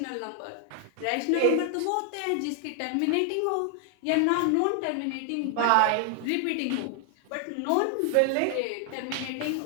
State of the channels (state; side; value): different; both; correlation 0.00